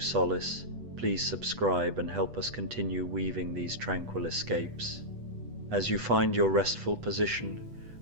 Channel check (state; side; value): late; left; 8.1 ms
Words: please subscribe and help us continue weaving these tranquil escapes. As you find your restful position,